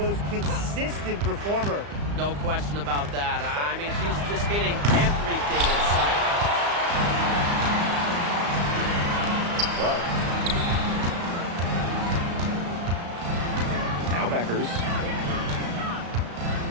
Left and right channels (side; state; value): left; late; 35 ms